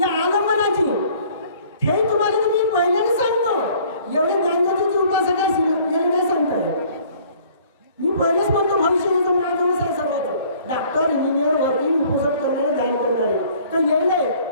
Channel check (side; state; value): both; inverted; correlation -0.55